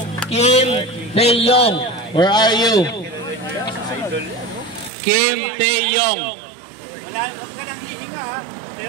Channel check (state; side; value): drops out; left; at 4.9 s